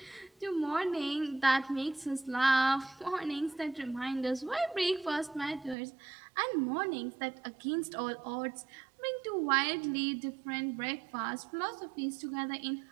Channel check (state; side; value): drops out; left; at 5.8 s